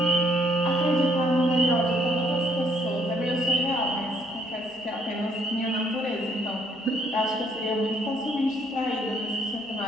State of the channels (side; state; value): both; normal; correlation 0.67